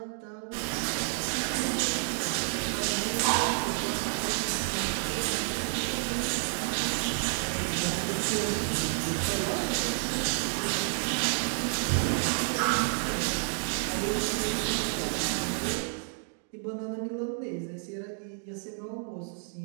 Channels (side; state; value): left; silent; 58 dB below the other